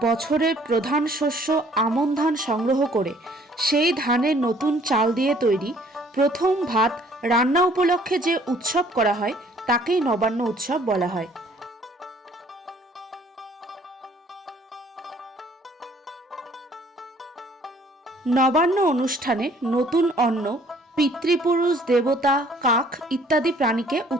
বছরের প্রধান শস্য আমন ধান সংগ্রহ করে সেই ধানের নতুন চাল দিয়ে তৈরি প্রথম ভাত রান্না উপলক্ষে যে উৎসব করা হয় তাকেই নবান্ন উৎসব বলা হয়। নবান্ন অনুষ্ঠানে নতুন অন্ন পিতৃপুরুষ, দেবতা, কাক ইত্যাদি প্রাণীকে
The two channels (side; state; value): both; normal; correlation 0.59